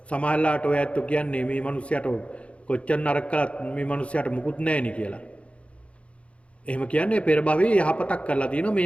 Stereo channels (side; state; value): right; late; 0.062 ms